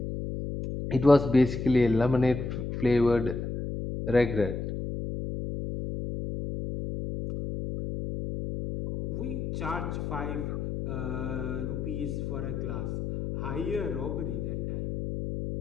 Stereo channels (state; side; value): noise; left; hum, 4 dB below the sound